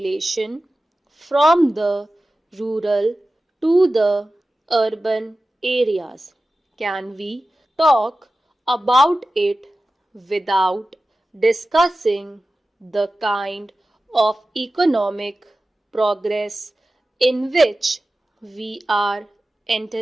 from the rural to the urban areas. Can we talk about it without discussing the kind of economic progress in which we are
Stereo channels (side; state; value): both; normal; correlation 0.95